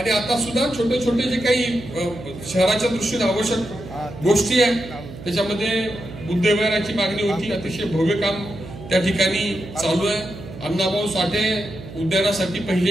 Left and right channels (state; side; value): noise; right; hum, 14 dB below the sound